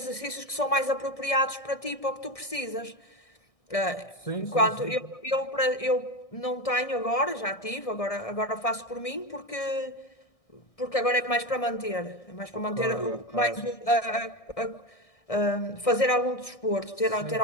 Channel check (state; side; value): late; right; 1.6 ms